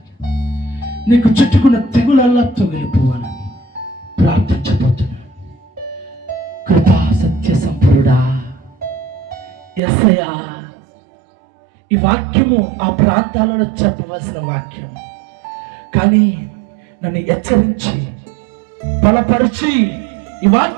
నీకు చుట్టుకున్న తెగులల్లా తొగిలిపోవాలని ప్రార్థించబోతున్నాను. కృపా సత్య సంపూర్ణుడా యేసయ్యా, ఈ వాక్యము ఆ ప్రాంతాలలో చెప్పవలసిన వాక్యం, కానీ నన్ను హెచ్చరించి బలపరిచి ఈ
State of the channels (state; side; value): drops out; left; at 9.8 s